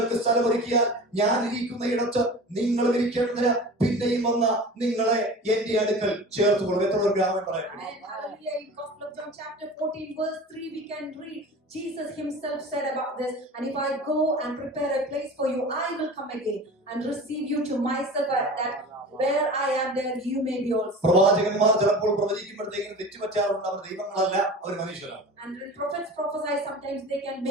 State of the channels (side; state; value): both; normal; correlation 0.37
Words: സ്ഥലമൊരുക്കിയാൽ ഞാൻ ഇരിക്കുന്ന ഇടത്ത് നിങ്ങൾ ഇരിക്കേണ്ടതിന് പിന്നെയും വന്ന് നിങ്ങളെ എന്റെ അടുക്കൽ ചേർത്തുകൊള്ളും. എത്ര ഒരു ഗ്രാമം പറയുന്നു. Hallelujah. In Gospel of John chapter 14 verse 3 we can read, Jesus himself said about this, and if I go and prepare a place for you, I will come again and receive you to myself, that where I am there you may be also. പ്രവാചകന്മാർ ചിലപ്പോൾ പ്രവചിക്കുമ്പോഴത്തേക്കും തെറ്റുപറ്റാറുണ്ട്. അവർ ദൈവങ്ങളല്ല, അവർ മനുഷ്യരാണ്. And when prophets prophesy, sometimes they can